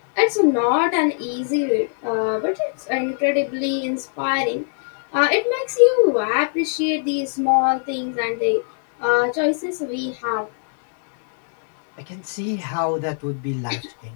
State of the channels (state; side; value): silent; right; 64 dB below the other